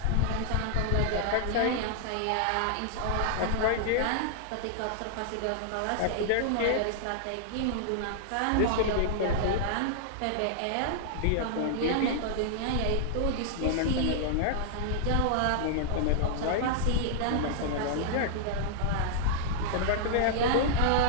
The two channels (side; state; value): both; different; correlation -0.01